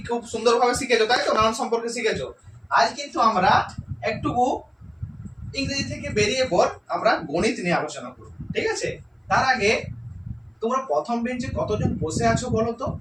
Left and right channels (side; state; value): both; identical; correlation 1.00